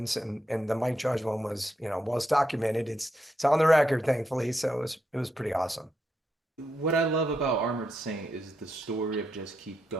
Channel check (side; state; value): both; normal; correlation 0.82